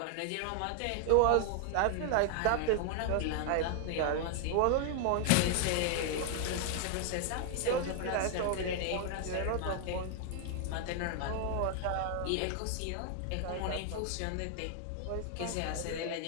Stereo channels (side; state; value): both; different; correlation 0.00